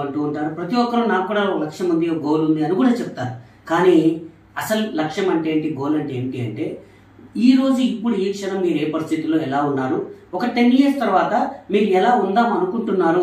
అంటూ ఉంటారు. ప్రతి ఒక్కరు నాకు కూడా ఒక లక్ష్యం ఉంది, ఒక గోల్ ఉంది అని కూడా చెప్తారు. కానీ అసలు లక్ష్యం అంటే ఏంటి, గోల్ అంటే ఏంటి అంటే ఈ రోజు ఇప్పుడు ఈ క్షణం మీరు ఏ పరిస్థితుల్లో ఎలా ఉన్నారు, ఒక 10 years తర్వాత మీరు ఎలా ఉందాం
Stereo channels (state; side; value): identical; both; correlation 1.00